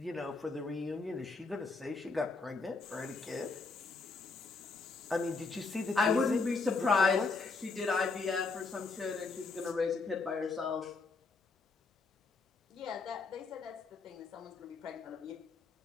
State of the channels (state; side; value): quieter; right; 4.0 dB